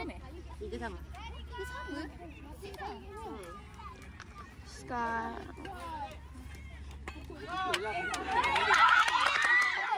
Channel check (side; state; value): both; identical; correlation 1.00